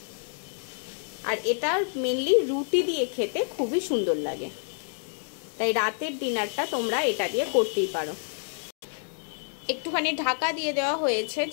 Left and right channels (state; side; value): silent; right; digital silence